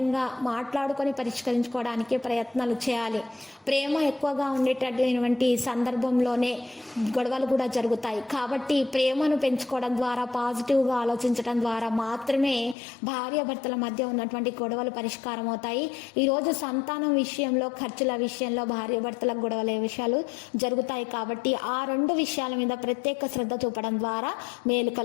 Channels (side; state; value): right; drops out; at 12.8 s